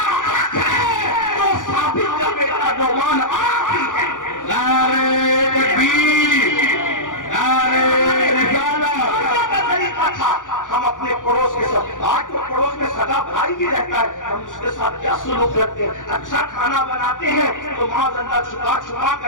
حق ہے تو ثابت کا بیٹا نعمان آپ ہی ہے۔ نعرہ تکبیر، نعرہ رسالت کا طریقہ تھا۔ ہم اپنے پڑوس کے ساتھ، آج تو پڑوس میں سگا بھائی بھی رہتا ہے، ہم اس کے ساتھ کیا سلوک رکھتے ہیں؟ اچھا کھانا بناتے ہیں تو معاذ اللہ چھپا چھپا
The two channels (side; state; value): right; late; 0.88 ms